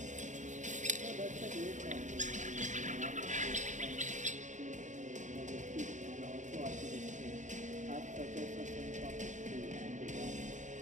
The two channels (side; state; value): left; late; 0.35 ms